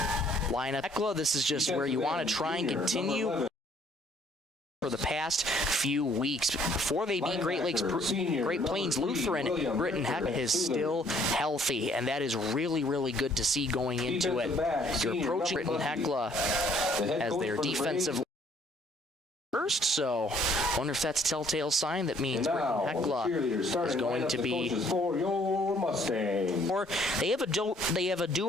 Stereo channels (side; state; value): both; normal; correlation 0.62